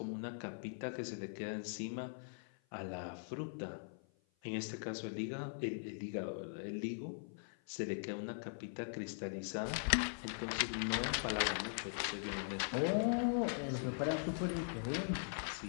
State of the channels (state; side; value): silent; right; 50 dB below the other